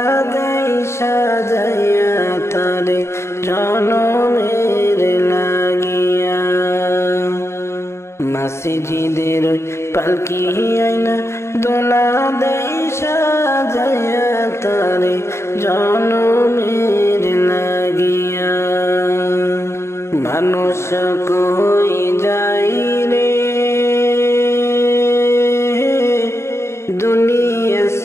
দেই সাজাইয়া তারে জনমের লাগিয়া মসজিদের পালকি আইনা দোলা দেই সাজাইয়া তারে জনমের লাগিয়া মানুষ কই যাই রে দুনিয়া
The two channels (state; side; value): late; right; 0.13 ms